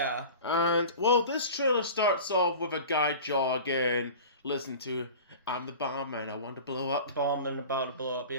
And, well, this trailer starts off with a guy jogging, listen to, I'm the bomb man, I want to blow up. Bombing about to blow up,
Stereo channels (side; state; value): both; inverted; correlation -0.37